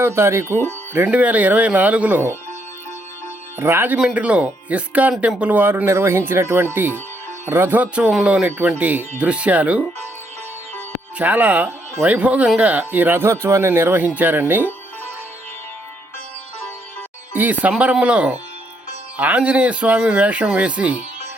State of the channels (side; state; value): both; normal; correlation 0.73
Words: తారీఖు 2024లో రాజమండ్రిలో ఇస్కాన్ టెంపుల్ వారు నిర్వహించినటువంటి రథోత్సవంలోనిటువంటి దృశ్యాలు. చాలా వైభోగంగా ఈ రథోత్సవాన్ని నిర్వహించారండి. ఈ సంబరంలో ఆంజనేయ స్వామి వేషం వేసి